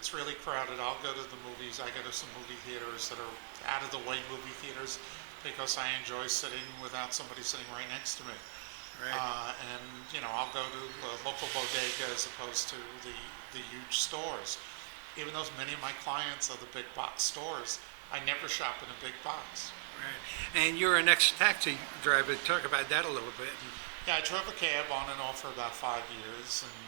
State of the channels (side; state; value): left; silent; digital silence